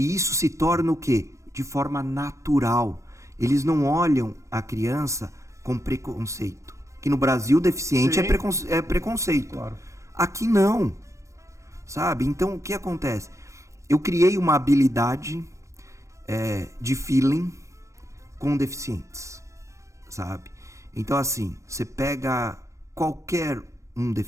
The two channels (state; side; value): late; left; 0.15 ms